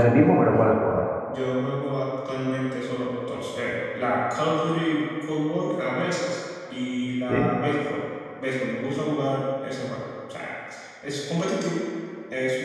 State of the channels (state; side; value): identical; both; correlation 1.00